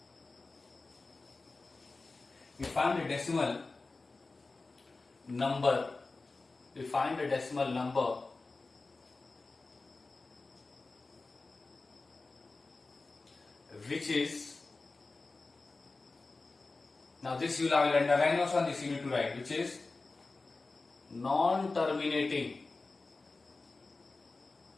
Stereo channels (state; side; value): quieter; right; 3.6 dB